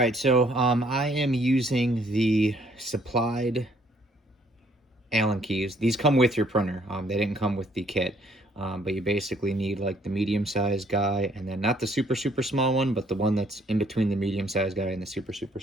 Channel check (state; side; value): normal; both; correlation 0.64